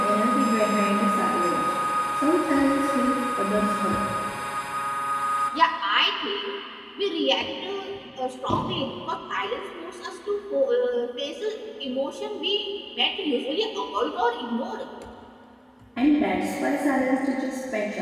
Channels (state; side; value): identical; both; correlation 1.00